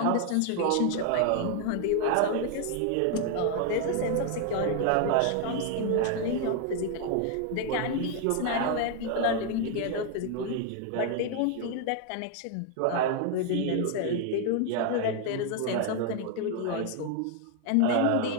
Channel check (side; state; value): both; different; correlation 0.00